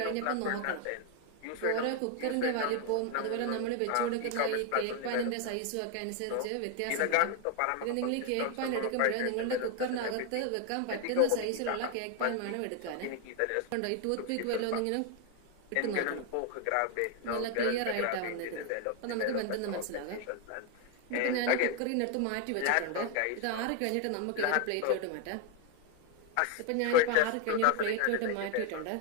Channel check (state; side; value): different; both; correlation 0.01